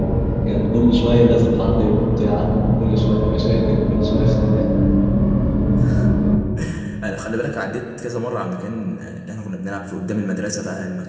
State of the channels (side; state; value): both; identical; correlation 1.00